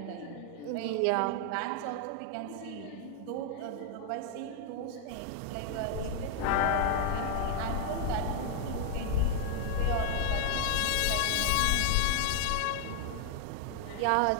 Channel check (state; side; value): different; both; correlation 0.00